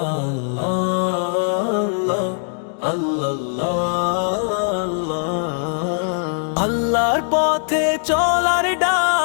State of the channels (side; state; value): right; silent; 65 dB below the other